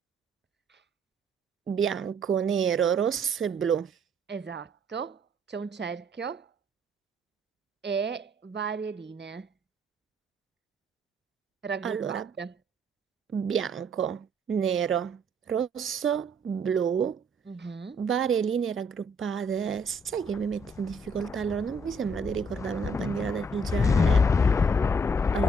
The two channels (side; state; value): both; normal; correlation 0.65